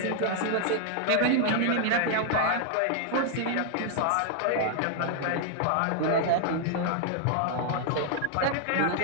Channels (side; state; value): both; different; correlation 0.00